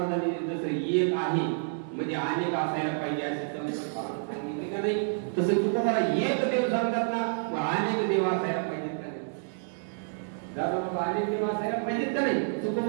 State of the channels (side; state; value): left; silent; 59 dB below the other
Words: जसं एक आहे म्हणजे अनेक असायला पाहिजे असे सांगितले का नाही तसं तुम्हाला एक देव सांगतात ना अनेक देव असायला पाहिजेत का नाही दादा बाबा अनेक देव असायला पाहिजेत का नाही